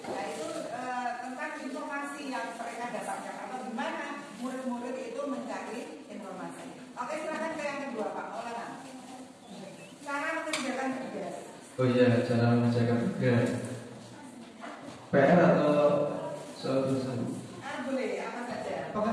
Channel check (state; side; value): identical; both; correlation 1.00